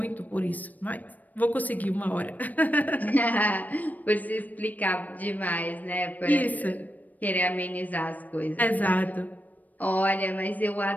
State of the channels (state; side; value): late; right; 0.080 ms